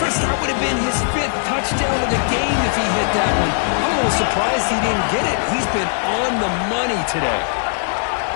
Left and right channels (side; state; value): right; silent; digital silence